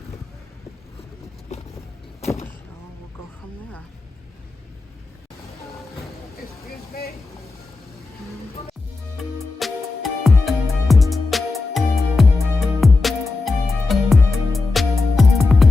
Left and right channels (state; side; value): quieter; right; 3.6 dB